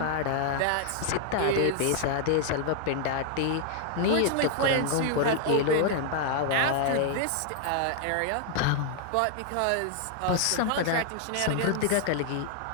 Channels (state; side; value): different; both; correlation 0.00